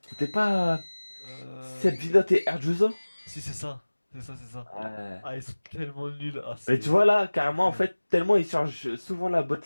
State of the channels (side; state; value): both; inverted; correlation -1.00